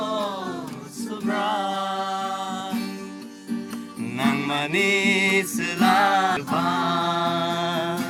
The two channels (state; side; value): identical; both; correlation 1.00